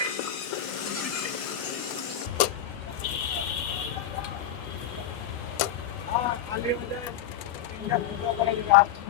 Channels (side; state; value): right; quieter; 10.0 dB